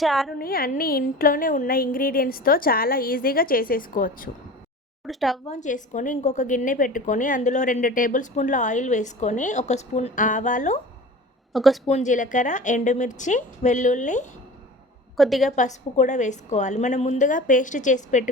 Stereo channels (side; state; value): both; normal; correlation 0.37